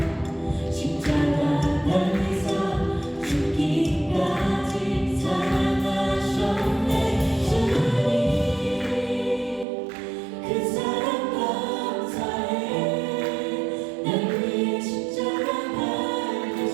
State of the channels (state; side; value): drops out; left; at 9.7 s